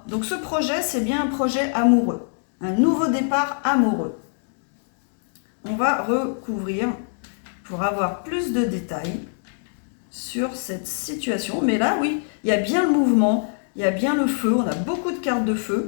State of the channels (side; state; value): right; silent; digital silence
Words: Donc ce projet, c'est bien un projet amoureux. Un nouveau départ amoureux. On va recouvrir pour avoir plus de détails sur cette situation. Mais là, oui, il y a bien le mouvement, il y a bien le feu. On a beaucoup de cartes de